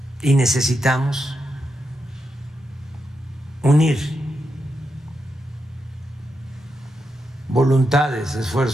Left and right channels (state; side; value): normal; both; correlation 0.85